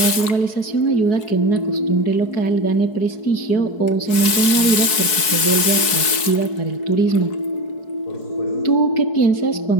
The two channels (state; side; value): late; right; 4.7 ms